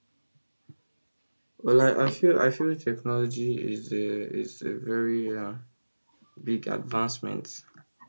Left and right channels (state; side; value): inverted; both; correlation -1.00